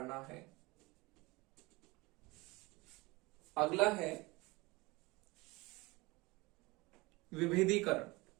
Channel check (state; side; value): quieter; left; 23.6 dB